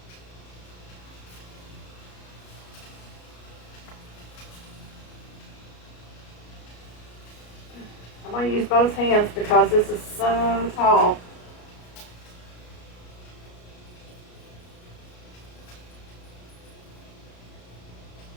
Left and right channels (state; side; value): late; right; 33 ms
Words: I'm going to use both hands because this is so tall.